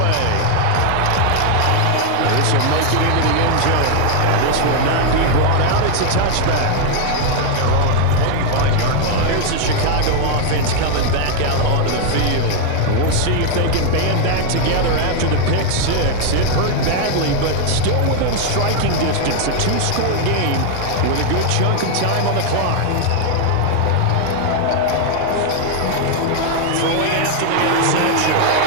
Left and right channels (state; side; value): different; both; correlation 0.00